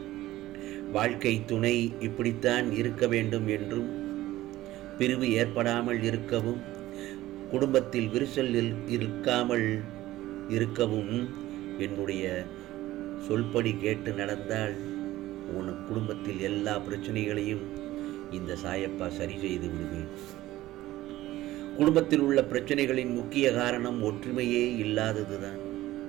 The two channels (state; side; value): quieter; left; 15.9 dB